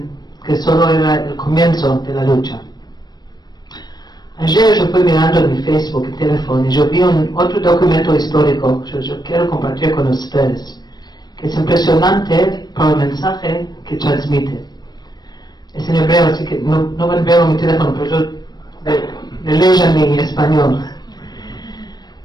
que solo era el comienzo de la lucha. Ayer yo fui mirando en mi Facebook y teléfono y yo vi otro documento histórico que yo quiero compartir con ustedes, que es impresionante por el mensaje que transmite. Es en hebreo, así que no van a ver mi teléfono, pero yo le leo en mi español.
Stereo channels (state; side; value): late; right; 0.20 ms